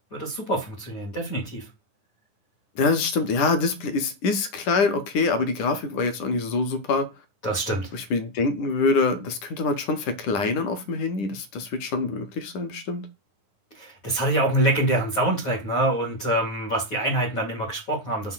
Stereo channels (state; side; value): late; right; 10 ms